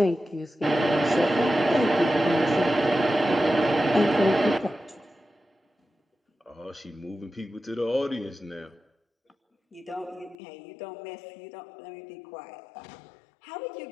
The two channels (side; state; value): right; drops out; at 10.4 s